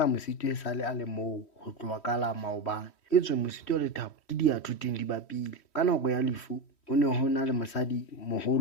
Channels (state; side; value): late; right; 3.1 ms